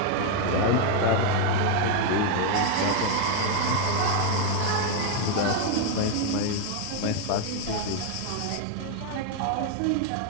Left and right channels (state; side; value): different; both; correlation 0.01